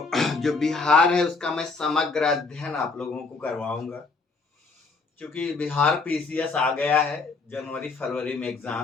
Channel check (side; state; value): right; quieter; 4.2 dB